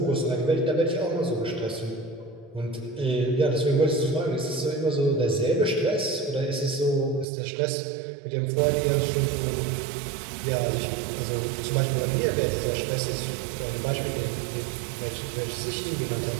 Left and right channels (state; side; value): drops out; left; at 7.2 s